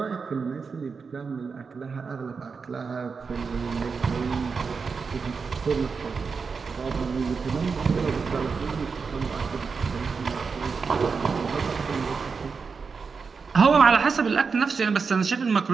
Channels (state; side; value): quieter; left; 5.2 dB